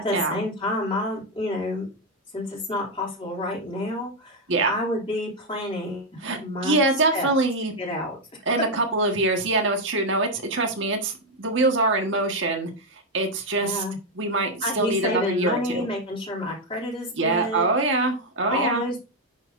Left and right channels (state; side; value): normal; both; correlation 0.03